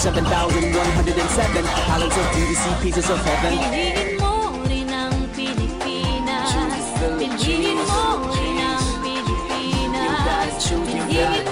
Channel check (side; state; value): both; identical; correlation 1.00